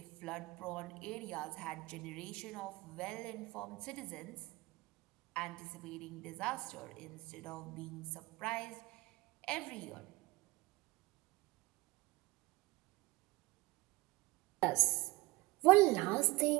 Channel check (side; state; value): left; quieter; 21.2 dB